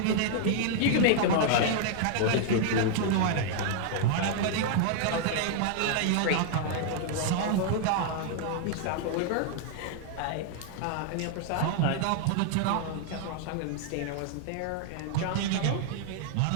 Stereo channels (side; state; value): both; different; correlation 0.00